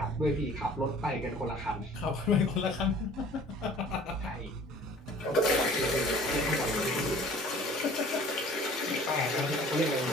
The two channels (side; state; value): both; normal; correlation 0.49